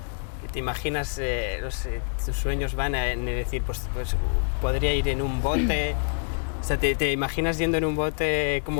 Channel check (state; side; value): silent; right; digital silence